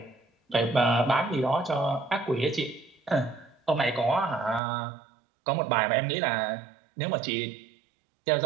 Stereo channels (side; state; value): left; drops out; at 4.6 s